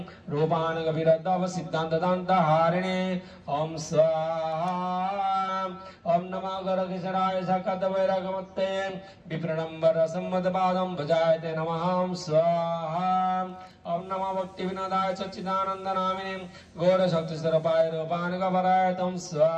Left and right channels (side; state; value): both; identical; correlation 1.00